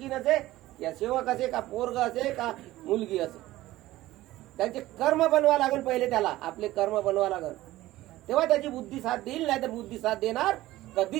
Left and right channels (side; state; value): left; quieter; 16.4 dB